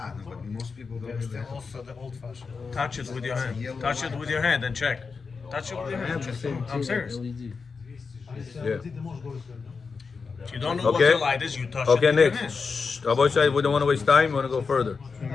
no, but most people don't understand. Touch it with your hand. Touch it with your hand and check. Touch it with your I hand. have the Check. same I'm tier serious. LED. Yeah. If you don't know what Okay. the light is, you touch Okay, it with your next. hand. Shh. Rabbi Shai, we don't want to waste time. We want to go further. Can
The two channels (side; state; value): right; quieter; 5.0 dB